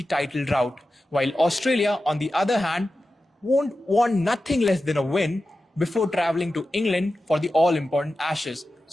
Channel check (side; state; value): both; normal; correlation 0.93